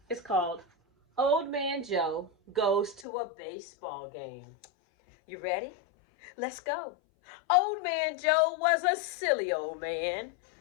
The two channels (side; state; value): right; drops out; at 3.1 s